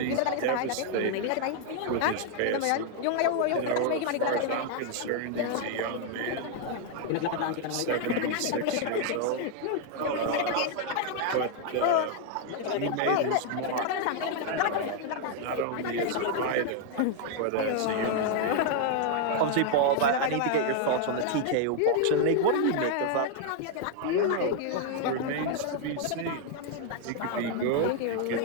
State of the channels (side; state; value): both; different; correlation 0.00